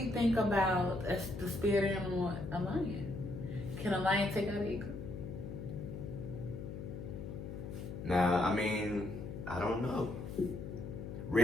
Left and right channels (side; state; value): left; noise; hum, 8 dB below the sound